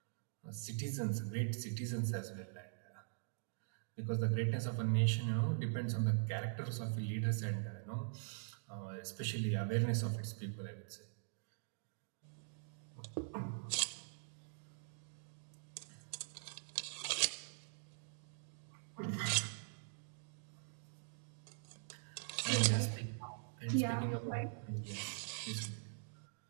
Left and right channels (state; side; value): silent; left; digital silence